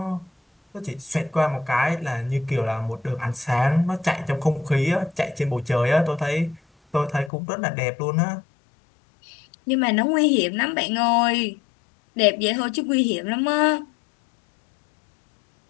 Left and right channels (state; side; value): drops out; right; at 7.3 s